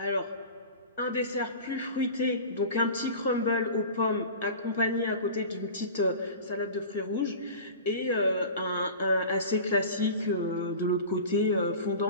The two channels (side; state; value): both; inverted; correlation -0.36